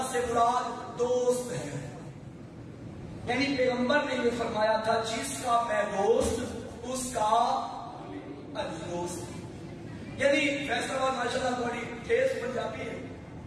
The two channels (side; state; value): both; identical; correlation 1.00